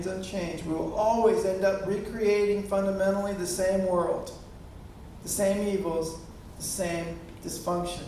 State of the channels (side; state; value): both; identical; correlation 1.00